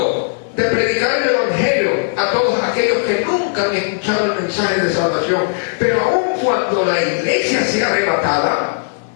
de predicar el Evangelio a todos aquellos que nunca han escuchado el mensaje de salvación. Pero aun cuando la iglesia sea arrebatada,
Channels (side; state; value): right; silent; 58 dB below the other